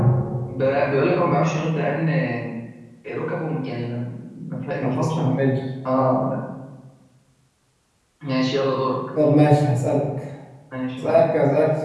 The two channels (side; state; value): both; identical; correlation 1.00